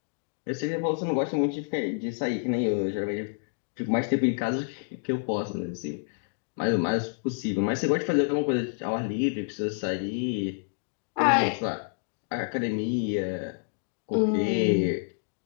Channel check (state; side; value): silent; right; digital silence